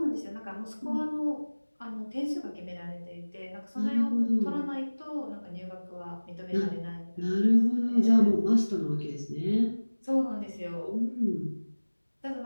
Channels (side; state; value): both; inverted; correlation -1.00